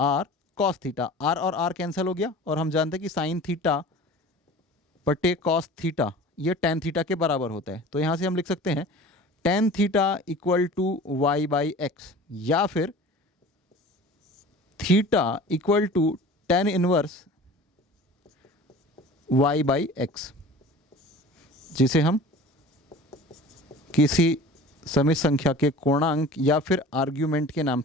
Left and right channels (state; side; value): normal; both; correlation 0.41